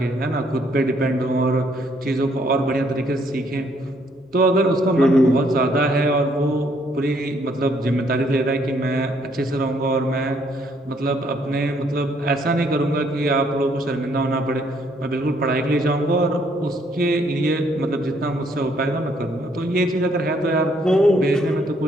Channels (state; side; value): normal; both; correlation 0.68